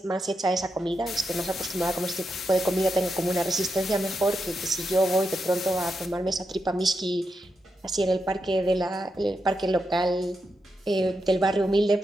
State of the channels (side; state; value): both; normal; correlation 0.85